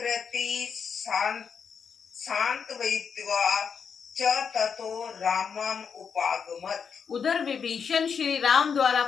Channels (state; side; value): quieter; right; 6.5 dB